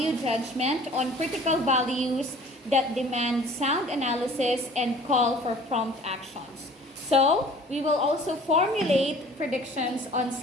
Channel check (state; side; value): normal; both; correlation 0.49